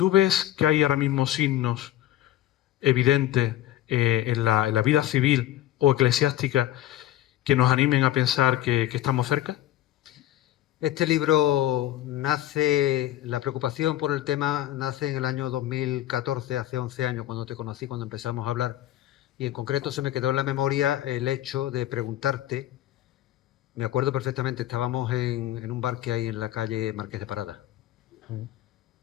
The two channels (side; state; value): right; quieter; 13.3 dB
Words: ves que hay ahora mismo signos evidentes en la vida civil o eclesiástica que nos animen a pensar que estamos cerca? Este libro nace, la preocupación por el tema nace en el año 2014, hace 11 años, cuando te conocí, cuando empezamos a hablar, y en concreto se me quedó en la memoria el hecho de preguntarte, me acuerdo perfectamente, estábamos en un bar que hay en la calle Marqués de Parada,